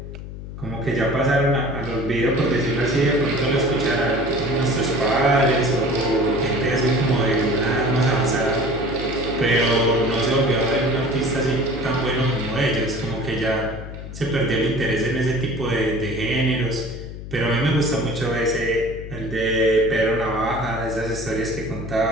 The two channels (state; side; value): noise; left; hum, 10 dB below the sound